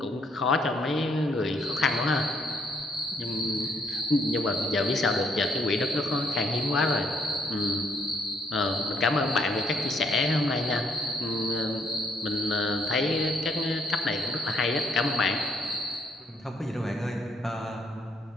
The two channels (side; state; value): both; normal; correlation 0.70